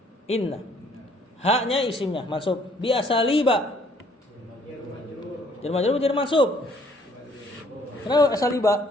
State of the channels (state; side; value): normal; both; correlation 0.62